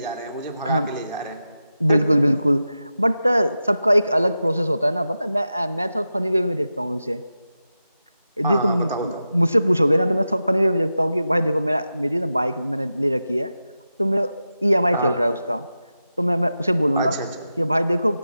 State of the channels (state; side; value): inverted; both; correlation -0.91